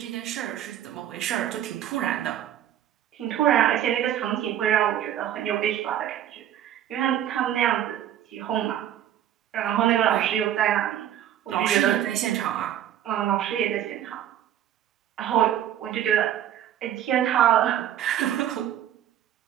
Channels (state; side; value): quieter; left; 11.1 dB